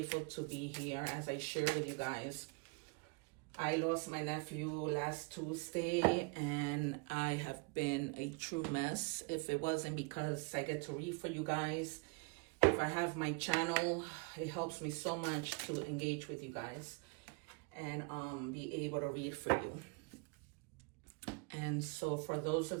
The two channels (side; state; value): left; quieter; 30.5 dB